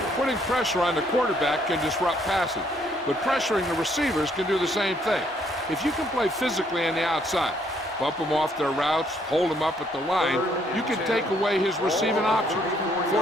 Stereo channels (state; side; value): normal; both; correlation 0.68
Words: Putting pressure on the quarterback can disrupt passing, but pressuring the receivers can do the same thing. If you can play physically on the outside, bump them off their routes, hold them up at the line, you can take away his receiving options,